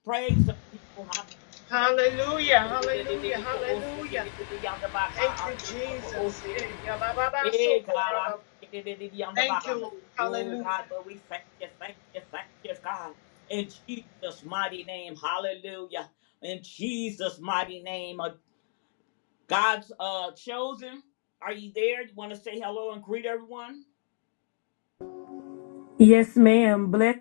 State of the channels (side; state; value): right; silent; 59 dB below the other